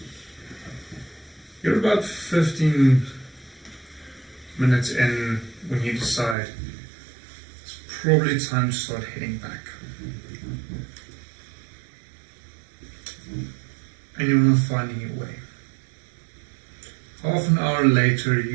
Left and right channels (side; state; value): left; drops out; at 6.4 s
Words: You're about 15 minutes in when you decide it's probably time to start heading back. And you're not finding your way. Half an hour later,